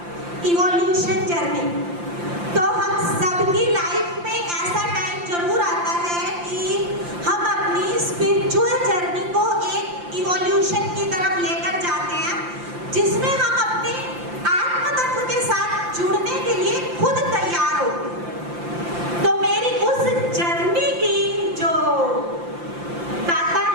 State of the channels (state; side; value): late; left; 5.8 ms